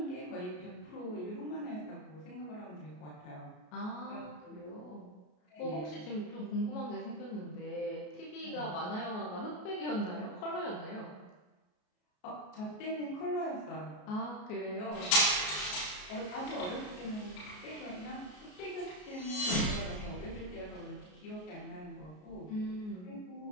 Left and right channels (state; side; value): late; right; 33 ms